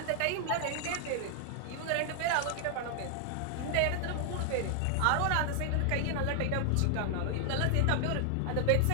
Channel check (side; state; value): both; different; correlation 0.00